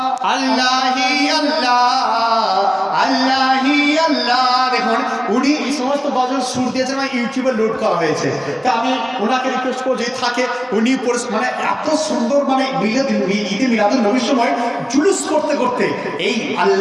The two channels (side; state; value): both; identical; correlation 1.00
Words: আল্লাহি আল্লাহ, আল্লাহি আল্লাহ। দেখুন উনি এই সমস্ত গজল সুর দিয়েছেন, আমার ইউটিউবে লোড করা হয়েছে। তা আমি ওনাকে রিকোয়েস্ট করবো যদি থাকে উনি মানে এত সুন্দর মানে ঈদে মিলাদুন নবীর সময় জুলুস করতে করতে এই